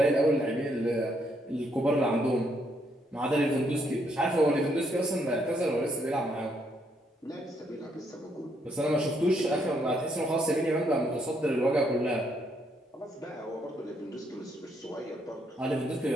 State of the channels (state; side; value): normal; both; correlation 0.73